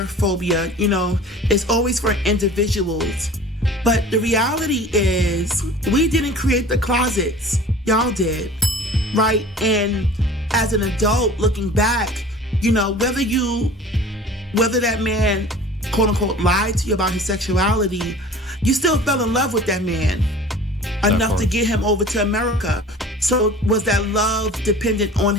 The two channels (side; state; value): both; normal; correlation 0.43